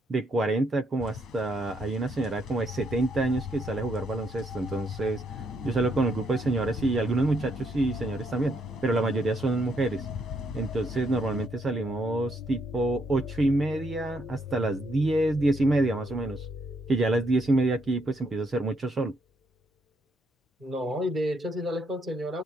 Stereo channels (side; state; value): both; normal; correlation 0.74